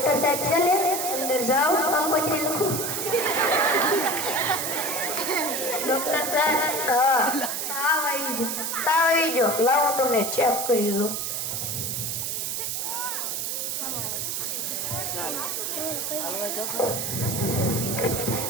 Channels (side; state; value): right; noise; hiss, 2 dB below the sound